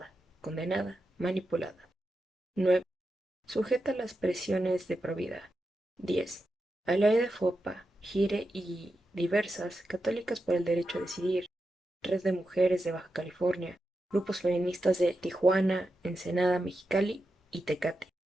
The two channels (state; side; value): normal; both; correlation 0.88